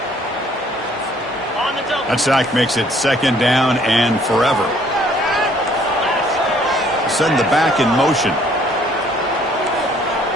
That sack makes it 2nd down and forever. Send the back in motion.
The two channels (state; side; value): normal; both; correlation 0.61